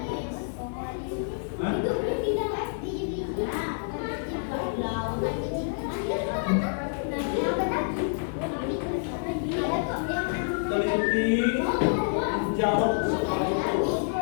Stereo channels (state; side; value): silent; right; digital silence